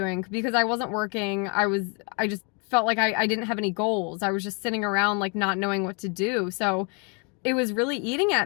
because I wasn't working. I just felt like I didn't have any goals. I was just sitting around like not knowing what to do. So it was really eating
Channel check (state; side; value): quieter; right; 34.7 dB